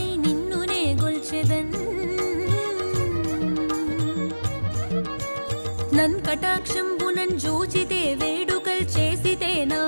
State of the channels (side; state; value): both; inverted; correlation -1.00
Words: నిన్నునే గొల్చెదన్ నన్ కటాక్షంబునన్ జూచితే వేడుకల్ చేసితే నా